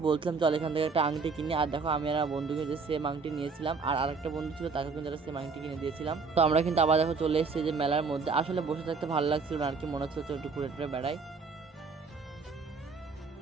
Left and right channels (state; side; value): quieter; left; 4.7 dB